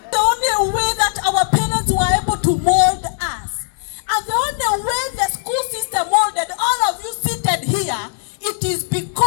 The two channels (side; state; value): right; silent; digital silence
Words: The only way that our parents were able to mold us, and the only way the school system molded all of you seated here, it is